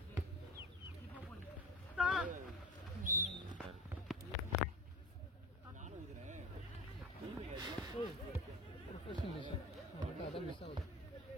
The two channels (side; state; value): both; normal; correlation 0.34